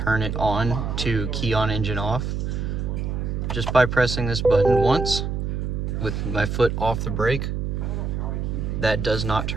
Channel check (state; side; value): noise; right; hum, 2 dB below the sound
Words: it on to key on engine off, just by pressing this button once with my foot off the brake, that does not